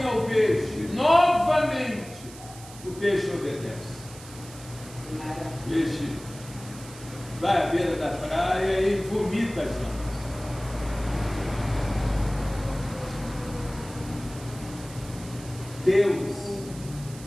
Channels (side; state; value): right; noise; hiss, 17 dB below the sound